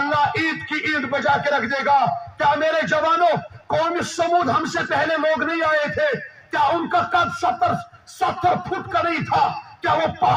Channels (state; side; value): identical; both; correlation 1.00